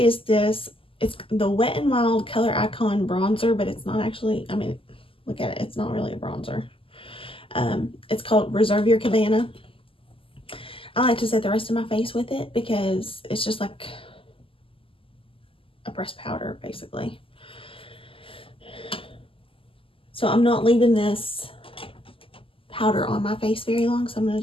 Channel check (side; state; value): right; late; 0.26 ms